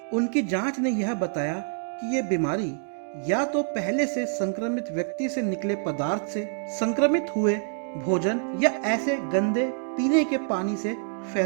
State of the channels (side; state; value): left; silent; 58 dB below the other